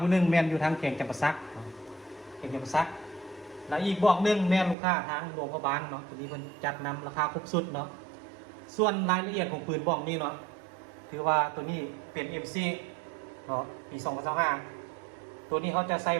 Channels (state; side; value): drops out; left; at 4.8 s